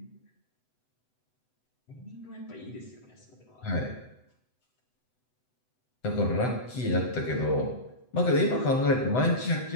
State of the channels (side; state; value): right; late; 7.9 ms